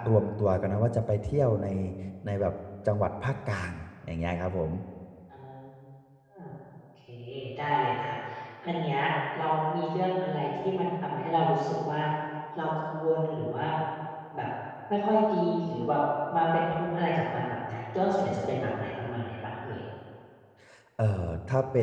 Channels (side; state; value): both; identical; correlation 1.00